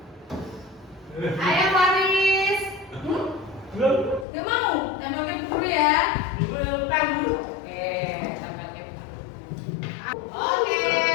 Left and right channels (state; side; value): drops out; right; at 4.2 s